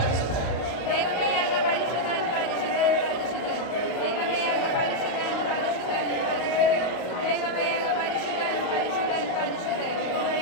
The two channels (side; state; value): right; late; 35 ms